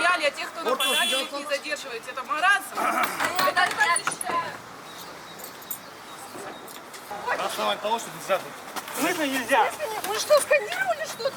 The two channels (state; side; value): identical; both; correlation 1.00